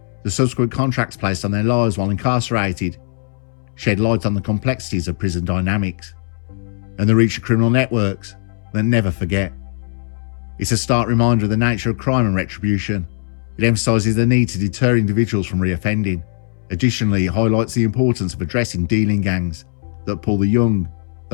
The subsequent contracts placed on their lives while incarcerated shed light on the complexities of prison dynamics and the reach of criminal networks that never forget. It's a stark reminder of the nature of crime and retribution. It emphasises the need to deter individuals from reoffending. Additionally, it highlights the importance of addressing dealing gangs that pull the young,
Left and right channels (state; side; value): silent; right; 66 dB below the other